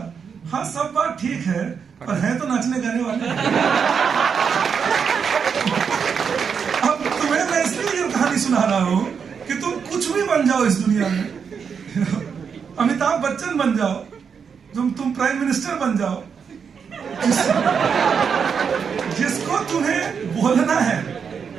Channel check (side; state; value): left; quieter; 6.5 dB